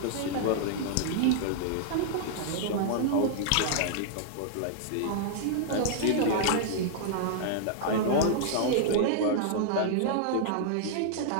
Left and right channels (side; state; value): both; different; correlation -0.01